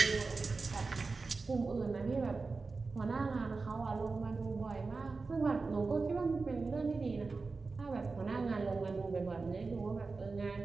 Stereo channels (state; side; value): quieter; left; 4.1 dB